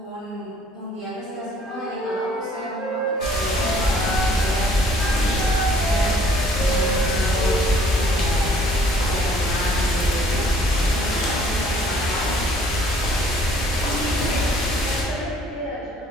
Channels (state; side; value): normal; both; correlation 0.59